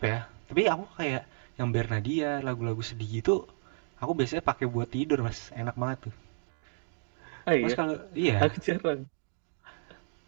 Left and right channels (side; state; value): left; silent; digital silence